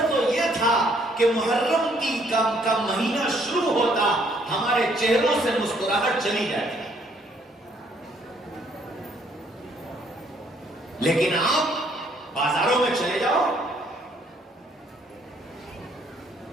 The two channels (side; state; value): both; normal; correlation 0.66